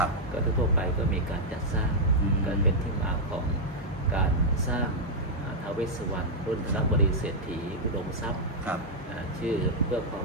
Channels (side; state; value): both; normal; correlation -0.04